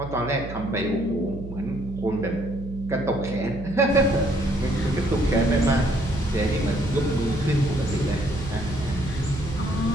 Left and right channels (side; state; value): right; noise; hum, 10 dB below the sound